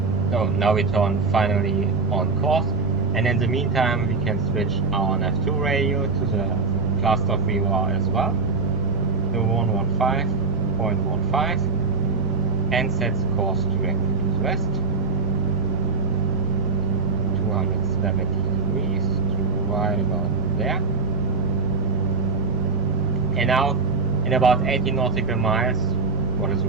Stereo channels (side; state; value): left; quieter; 4.3 dB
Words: So now we turn finally on course, and in the meantime we can switch our nav2 radio to the cluster VOR as well, the 115.15, and set the course directly to the west, 270 degrees to right about there. And now in about 80 nautical miles, what is